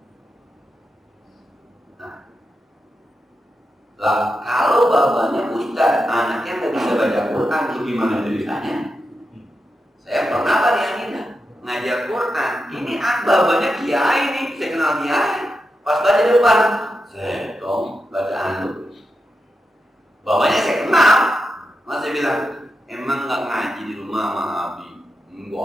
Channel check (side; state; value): both; normal; correlation 0.88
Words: Nah, lah kalau bapaknya ustaz, anaknya nggak bisa baca Quran, itu gimana ceritanya? Saya pernah tadi Aminah ngajar Quran, ini bapaknya kiai nih, saya kenal kiai. Pas baca depan, saya dong bacaan lu. Bapaknya saya kenal, masih bilang, emang nggak ngaji di rumah sama Abi?